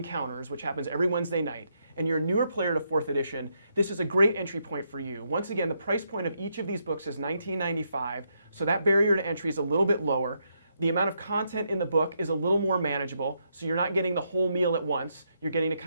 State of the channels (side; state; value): both; inverted; correlation -0.78